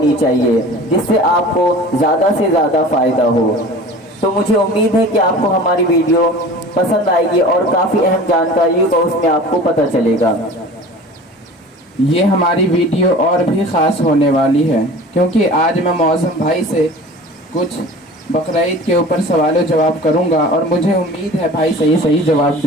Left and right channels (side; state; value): both; normal; correlation 0.40